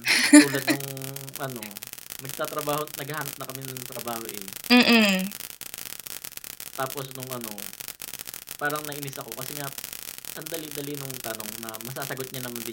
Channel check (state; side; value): identical; both; correlation 1.00